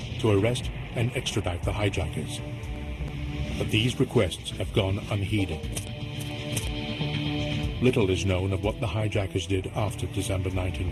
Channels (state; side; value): identical; both; correlation 1.00